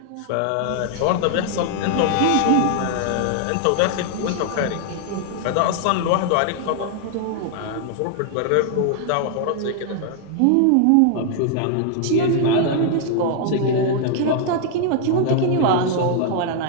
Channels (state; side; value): different; both; correlation 0.00